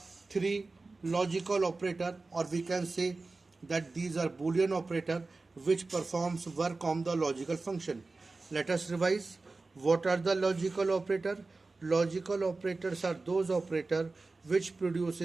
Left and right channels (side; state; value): left; quieter; 3.6 dB